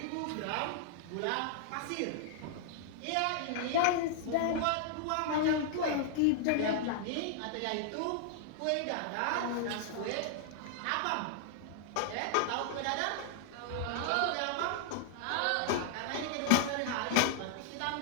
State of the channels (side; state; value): both; different; correlation -0.01